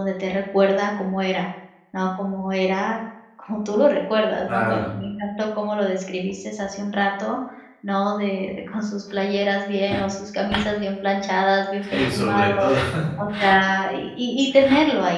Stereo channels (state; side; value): identical; both; correlation 1.00